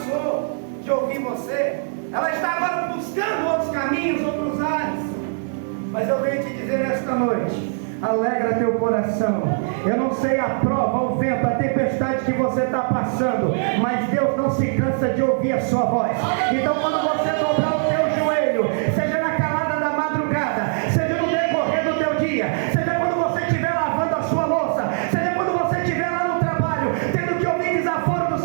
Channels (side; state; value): left; silent; 64 dB below the other